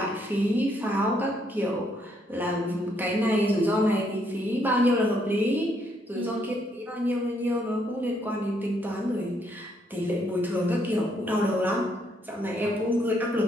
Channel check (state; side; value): normal; both; correlation 0.72